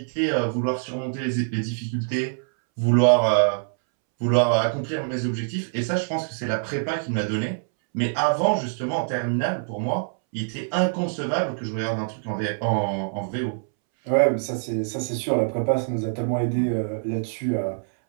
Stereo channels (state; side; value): silent; left; 62 dB below the other